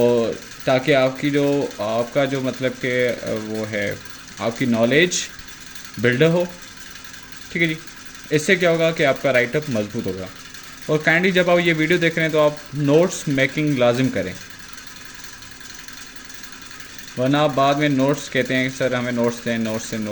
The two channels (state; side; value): identical; both; correlation 1.00